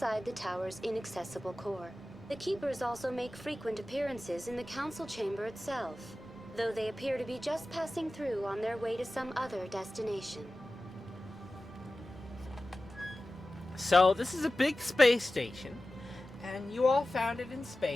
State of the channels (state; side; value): normal; both; correlation 0.95